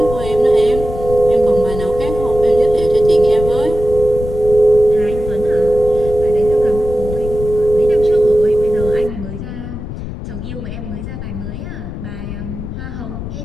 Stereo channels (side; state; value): left; noise; rumble, 8 dB below the sound